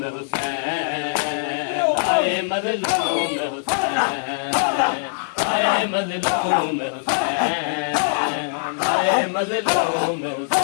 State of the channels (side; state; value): right; silent; digital silence